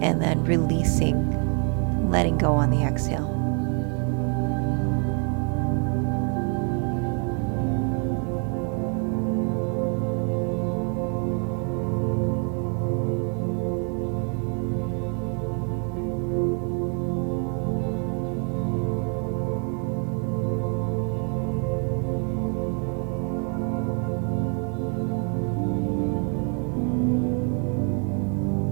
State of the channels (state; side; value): quieter; left; 38.9 dB